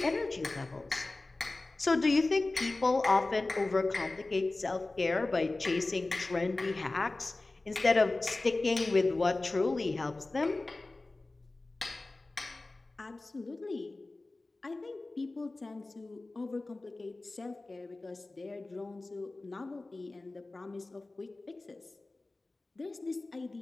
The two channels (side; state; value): right; quieter; 3.1 dB